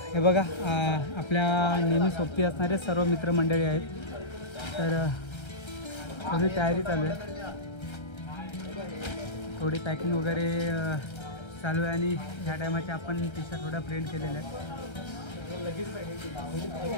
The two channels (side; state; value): right; late; 1.3 ms